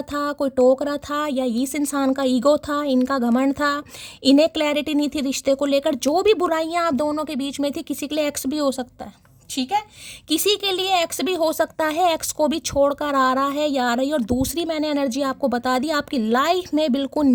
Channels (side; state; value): both; identical; correlation 1.00